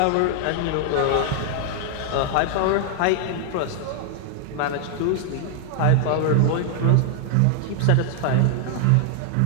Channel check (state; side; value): different; both; correlation 0.00